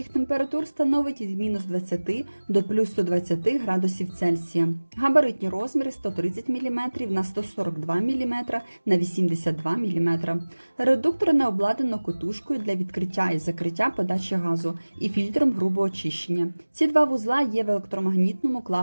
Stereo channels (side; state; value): both; inverted; correlation -1.00